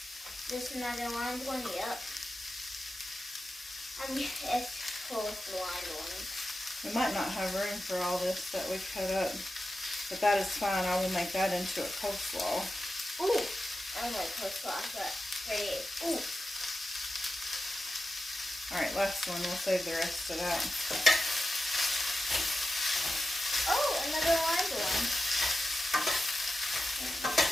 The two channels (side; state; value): both; normal; correlation 0.91